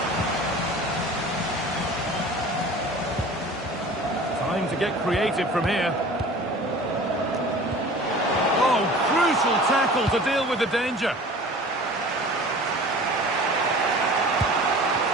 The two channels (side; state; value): both; normal; correlation 0.42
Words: Time to get creative from here. Oh, crucial tackle to deal with the danger.